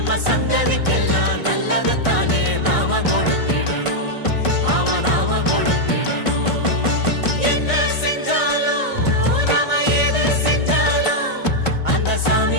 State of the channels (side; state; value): right; late; 1.5 ms